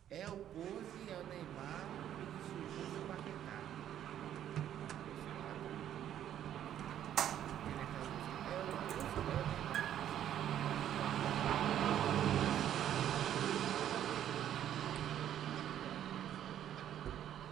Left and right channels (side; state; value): left; quieter; 10.7 dB